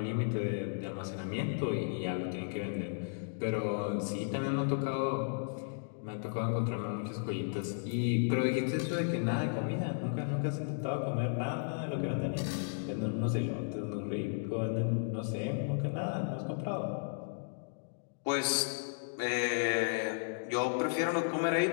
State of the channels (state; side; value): silent; right; digital silence